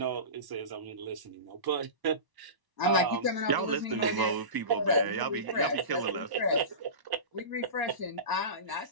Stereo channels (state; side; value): late; left; 1.0 ms